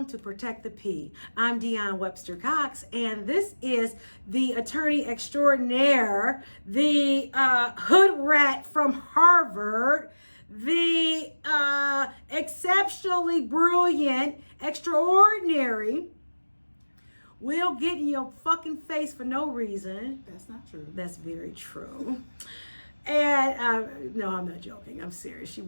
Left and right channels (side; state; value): both; inverted; correlation -1.00